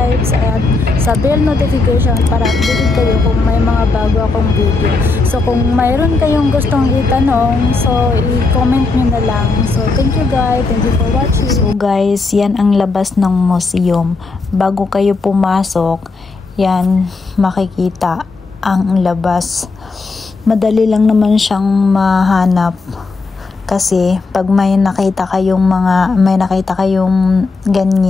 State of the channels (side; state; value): right; quieter; 3.8 dB